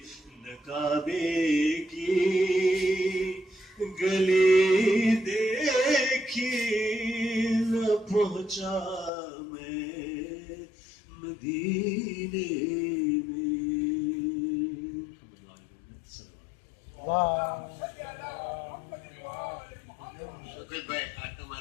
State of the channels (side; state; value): right; drops out; at 9.1 s